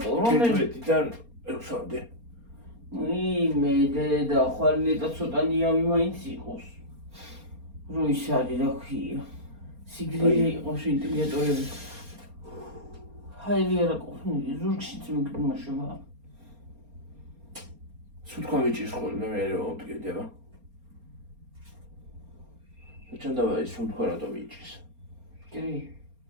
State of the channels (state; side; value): late; left; 4.3 ms